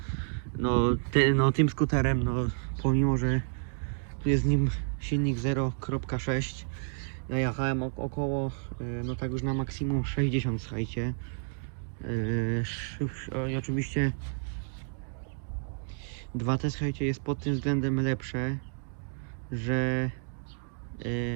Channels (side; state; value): left; silent; 58 dB below the other